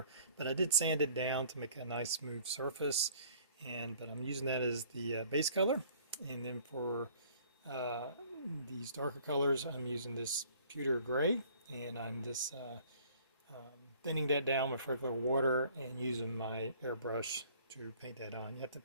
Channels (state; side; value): inverted; both; correlation -0.56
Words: but I did sand it down to make a nice smooth surface, but I'm using that as the base color. And then for these darker colors, I'm using this pewter gray, and I'm just thinning that down with regular water and using my airbrush to paint that on. You have to